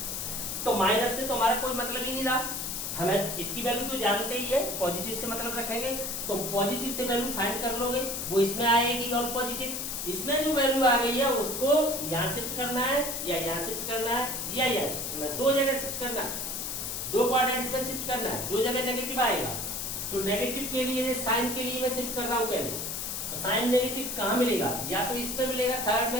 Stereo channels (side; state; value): left; noise; hiss, 4 dB below the sound